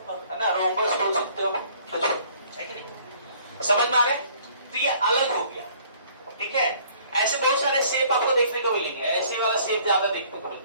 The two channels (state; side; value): inverted; both; correlation -0.57